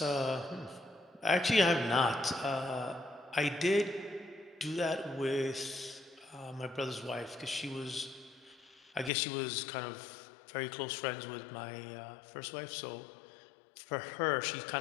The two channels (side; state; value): right; drops out; at 9.1 s